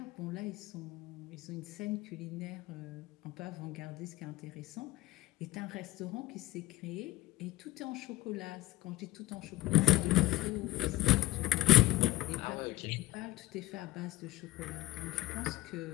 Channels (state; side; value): quieter; right; 16.9 dB